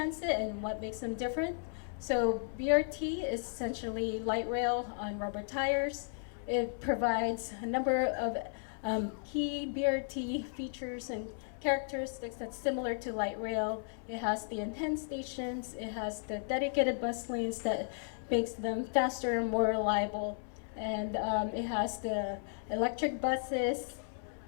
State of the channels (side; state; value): right; silent; 55 dB below the other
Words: and what makes them different? So BRT is essentially light rail on rubber tires. It provides a number of key BRT features and characteristics that's similar to light rail. It has the enhanced stations, it has the dedicated bus lanes that makes them faster and more reliable, and it has the electric buses,